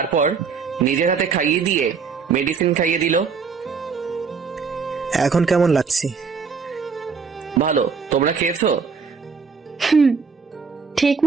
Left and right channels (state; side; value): quieter; left; 5.6 dB